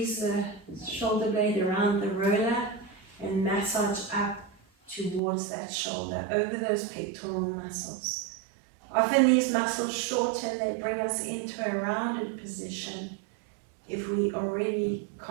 the shoulder blade around the roller and massage up towards that shoulder, over those pectoral muscles. Often these muscles shorten, they bring us into a rounded position. If we already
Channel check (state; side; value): drops out; left; at 5.2 s